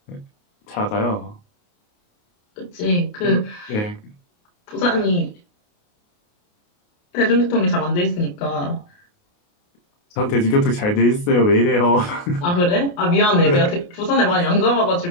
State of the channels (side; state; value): right; late; 28 ms